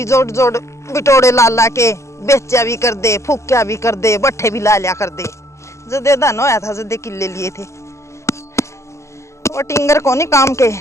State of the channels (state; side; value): late; right; 0.14 ms